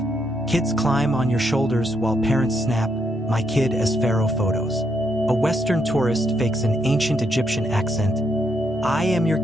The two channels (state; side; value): normal; both; correlation 0.77